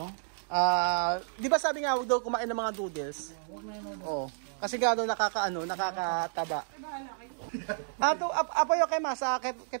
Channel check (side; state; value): left; silent; digital silence